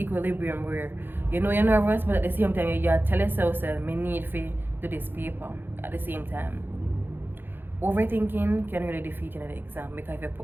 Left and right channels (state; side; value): late; left; 0.099 ms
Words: where you know you're nervous, but at the same time you tell yourself, me need to do this paper at the same time. Overthinking can really defeat you in the exam, because if you